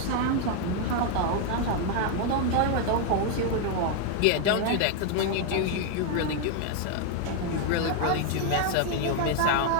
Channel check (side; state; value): both; different; correlation 0.00